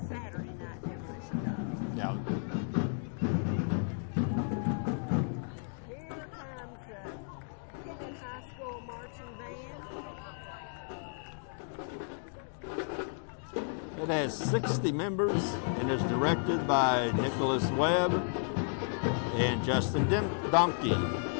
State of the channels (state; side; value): silent; right; 56 dB below the other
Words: night demolition derby. Yeah. Here comes the Kennett High School Marching Band. It has 60 members and is directed by Nicholas Webb and Justin Donkey.